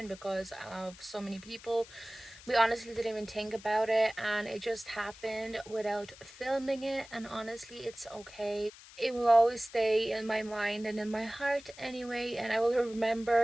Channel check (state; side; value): noise; left; hiss, 19 dB below the sound